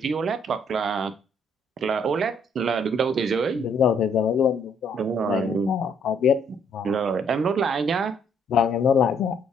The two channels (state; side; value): normal; both; correlation 0.67